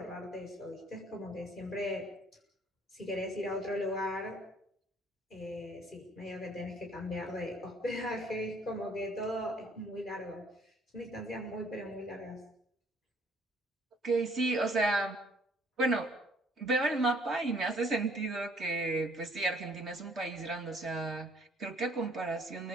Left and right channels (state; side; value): normal; both; correlation 0.60